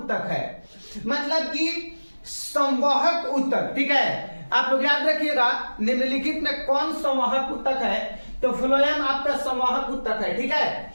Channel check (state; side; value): inverted; both; correlation -1.00